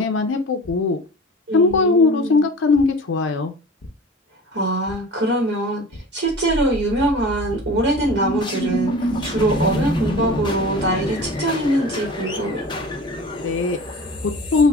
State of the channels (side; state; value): both; normal; correlation 0.38